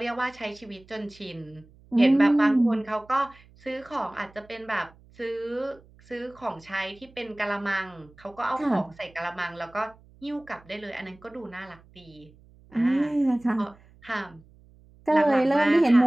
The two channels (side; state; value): right; noise; hum, 26 dB below the sound